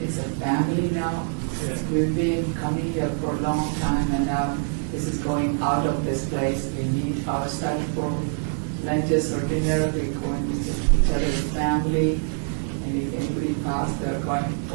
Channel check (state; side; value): silent; left; 62 dB below the other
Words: a family now. We've been coming here for a long time, and now this is going out of this place. We meet outside for lunches or dinner. We go and visit each other's family, and if anybody passes, they're going